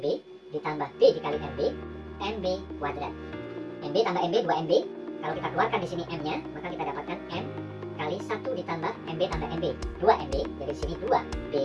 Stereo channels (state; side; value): identical; both; correlation 1.00